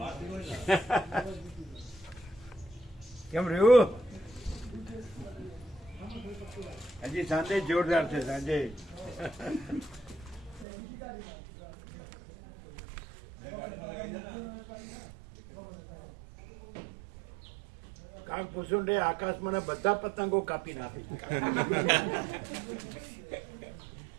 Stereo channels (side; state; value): left; drops out; at 10.7 s